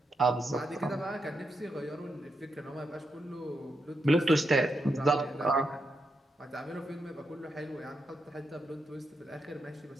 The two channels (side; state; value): both; normal; correlation 0.83